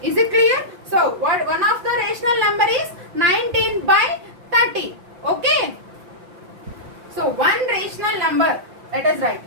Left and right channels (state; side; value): late; left; 5.7 ms